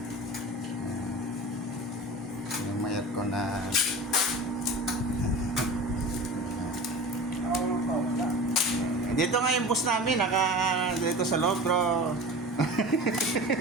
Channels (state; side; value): normal; both; correlation 0.34